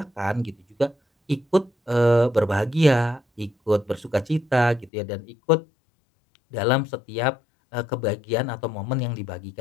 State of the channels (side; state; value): right; drops out; at 4.9 s